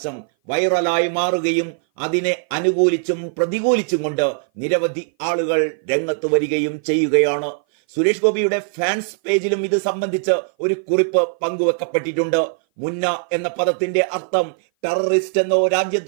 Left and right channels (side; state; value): left; silent; 58 dB below the other